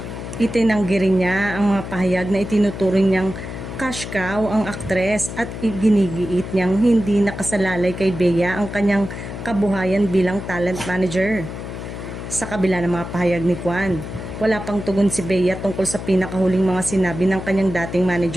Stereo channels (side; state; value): left; noise; hum, 8 dB below the sound